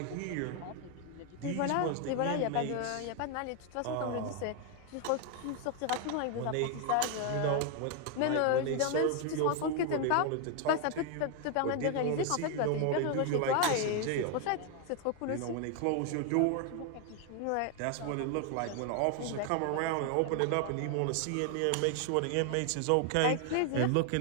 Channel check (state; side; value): different; both; correlation 0.00